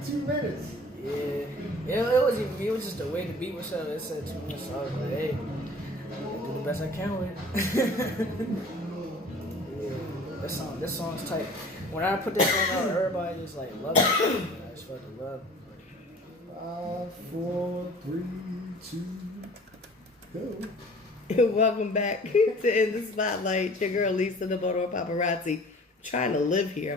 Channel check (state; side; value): normal; both; correlation 0.47